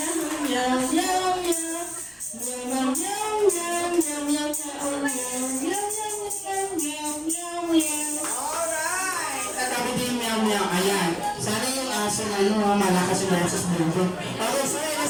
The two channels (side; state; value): both; identical; correlation 1.00